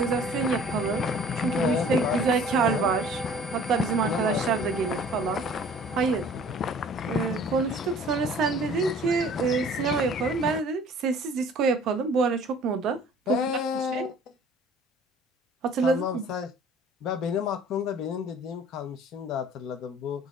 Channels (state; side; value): normal; both; correlation 0.50